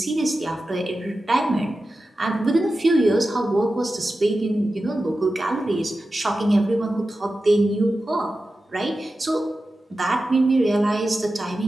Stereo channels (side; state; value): both; normal; correlation 0.93